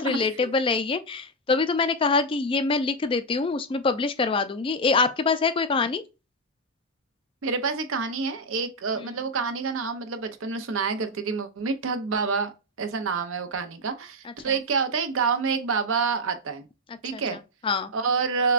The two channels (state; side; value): normal; both; correlation 0.02